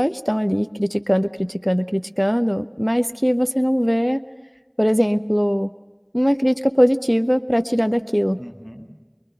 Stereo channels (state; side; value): identical; both; correlation 1.00